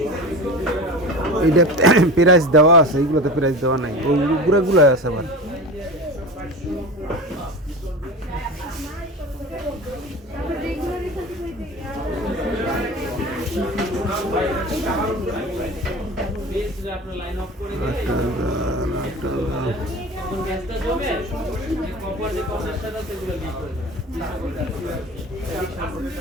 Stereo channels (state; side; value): normal; both; correlation 0.32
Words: এইটা প্রাইস দেওয়া আছে, এইগুলোতে প্রাইস দেওয়া নাই, ওইগুলো আছে আবার।